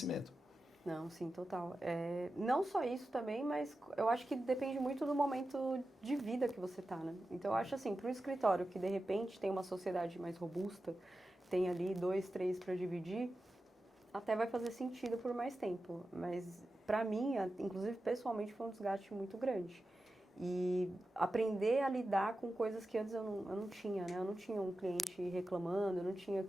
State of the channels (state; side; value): normal; both; correlation 0.92